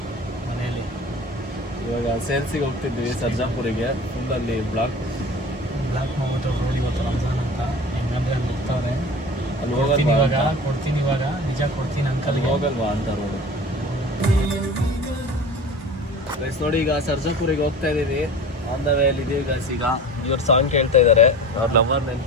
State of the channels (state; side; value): normal; both; correlation 0.37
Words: ಮನೆಯಲ್ಲಿ. ಇವಾಗ ಸೇಲ್ಸಿಗೆ ಹೋಗ್ತಿದ್ವಿ ಸರ್ಜಾಪುರಿಗೆ. ಫುಲ್ಲಲ್ಲಿ ಬ್ಲಾಕ್ ಮಾಡ್ಬಿಟ್ಟು ರೋಡ್ ಇವತ್ತು ರಂಜಾನ್ ಅಂತ ಹೆಂಗಂದ್ರೆ ಅಲ್ಲಿ ಹೋಗ್ತಾವ್ರೆ. ಅಲ್ಲಿ ಕೊಡ್ತೀನಿ ಇವಾಗ ನಿಜ ಕೊಡ್ತೀನಿ ಅಂಕಲ್ಗೆ. ಹೋಗಲ್ವಾ ಅಂತ ರೋಡು ಗೈಸ್. ನೋಡಿ ಈಗ ಸರ್ಜಾಪುರಿಗೆ ಹೋಗ್ತಾ ಇದೀವಿ. ಆನ್ ದ ವೇ ಅಲ್ಲಿ ಇದೀವಿ ಗೈಸ್. ಈಗ ಇವ್ರು ಸಾಂಗ್ ಕೇಳ್ತಾ ಇದ್ದಾರೆ. ಅವ್ರ ಲವರ್ ನೆನ್ಪು